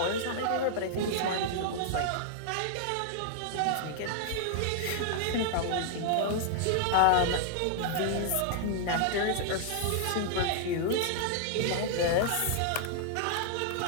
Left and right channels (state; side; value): different; both; correlation -0.01